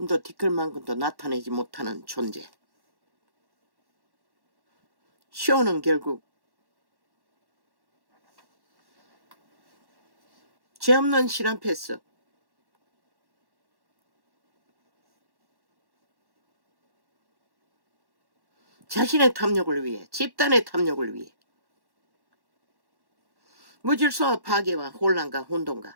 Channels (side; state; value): left; late; 1.1 ms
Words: 티끌만큼도 나타내지 못하는 존재. 쇼는 결국 죄 없는 신 앞에서 자신의 탐욕을 위해, 집단의 탐욕을 위해 무질서와 파괴와 혼란과